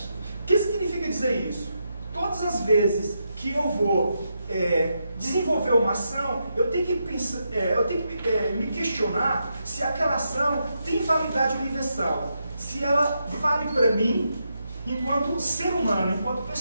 O que significa dizer isso? Todas as vezes que eu vou desenvolver uma ação, eu tenho que pensar, me questionar se aquela ação tem validade universal, se ela vale para mim enquanto ser humano, enquanto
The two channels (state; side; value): inverted; both; correlation -0.83